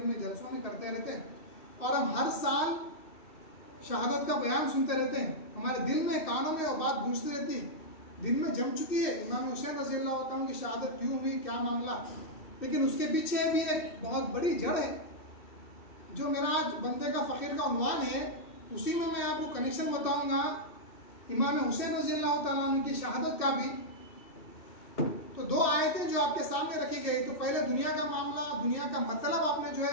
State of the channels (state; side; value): late; right; 2.6 ms